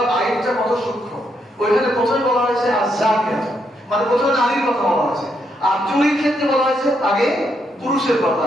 আইনটা কত সূক্ষ্ম। ওইখানে প্রথমে বলা হয়েছে আযানিয়াত, মানে প্রথমে নারীর কথা বলা হয়েছে, আর চুরির ক্ষেত্রে বলা হয়েছে আগে পুরুষের কথা।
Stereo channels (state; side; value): normal; both; correlation 0.78